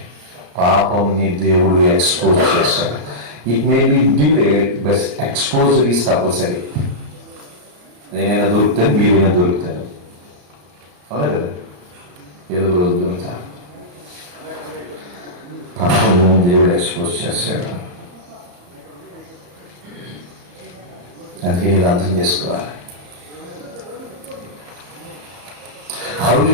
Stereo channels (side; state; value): left; late; 34 ms